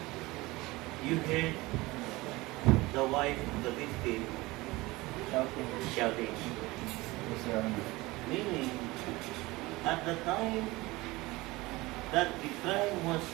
you heard the wife of the victim shouting. Yes, Your Honor. Meaning, at the time that the crime was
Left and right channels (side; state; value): left; quieter; 21.1 dB